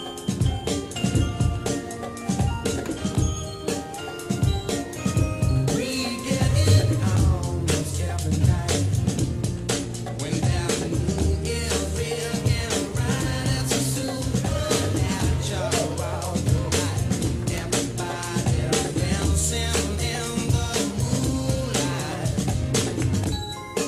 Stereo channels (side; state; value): both; identical; correlation 1.00